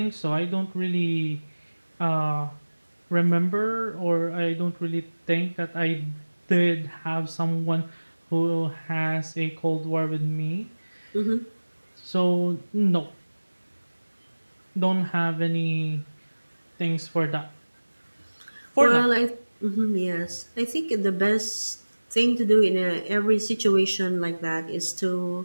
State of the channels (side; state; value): both; inverted; correlation -1.00